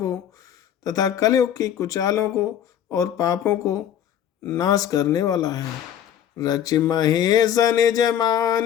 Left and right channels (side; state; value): right; quieter; 9.9 dB